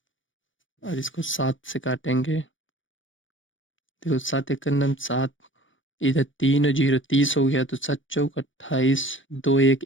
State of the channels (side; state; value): right; late; 0.56 ms